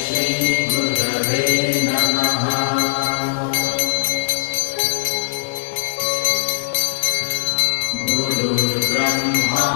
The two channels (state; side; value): silent; right; digital silence